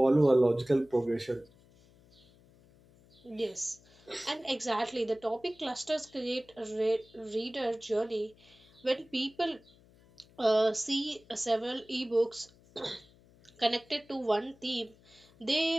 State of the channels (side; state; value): left; noise; hum, 27 dB below the sound